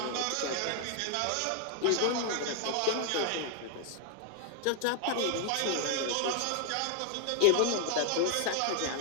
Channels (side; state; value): both; different; correlation 0.00